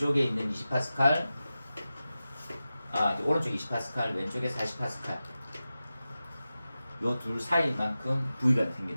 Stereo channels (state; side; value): inverted; both; correlation -0.94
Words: 있는 20파스칼, 오른쪽 20파스칼, 왼쪽에 40파스칼. 요 둘 사이만큼 V가